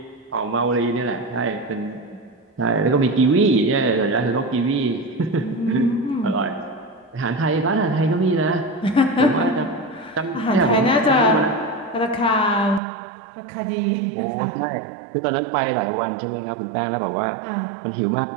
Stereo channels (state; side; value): drops out; left; at 12.8 s